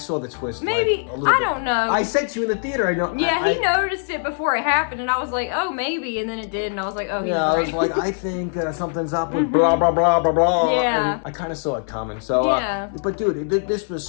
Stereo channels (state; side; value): silent; right; 65 dB below the other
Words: the twist. Maybe. Like, a little I bit. don't know. I said to you in the theater, I know. Yeah, he noticed it before it happened, and I was like, oh, maybe, and then it did, and I was like, oh, he's Yeah, I right. was like, I think something's up with blah, blah, blah, blah, blah. Yeah. And I kind of saw it coming. So, Yeah. But dude, this was